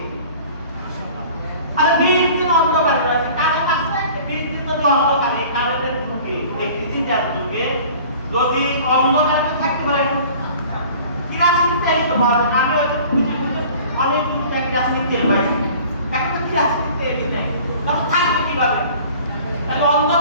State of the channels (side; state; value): both; inverted; correlation -0.46